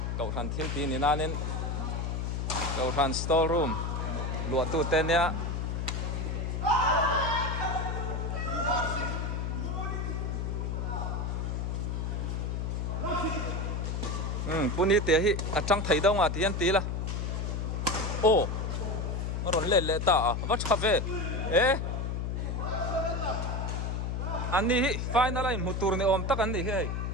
cậu thằng thiếu tí nên nên cậu thằng store room lụa tủ tên nhá puni te hi achang thai dong ti an ti la ron le ta va chave ani hi final line mutur ne om tak an ni he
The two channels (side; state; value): left; noise; hum, 1 dB below the sound